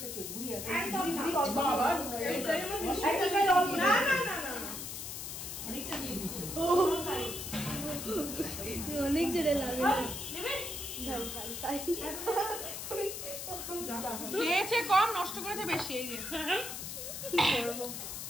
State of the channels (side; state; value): left; noise; hiss, 7 dB below the sound